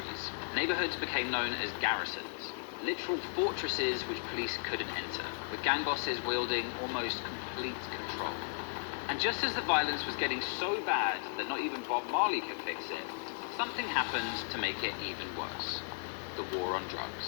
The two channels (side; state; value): right; silent; 54 dB below the other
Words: Neighborhoods became known as garrisons, literal fortresses which police couldn't enter, with gang bosses wielding almost complete control. And just as the violence was getting so bad that not even Bob Marley could fix it, something happened to make it even worse. The war on